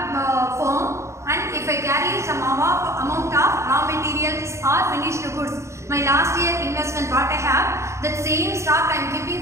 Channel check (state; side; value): late; left; 0.14 ms